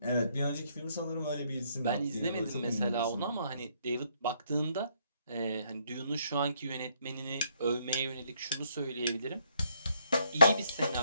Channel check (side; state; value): both; inverted; correlation -0.70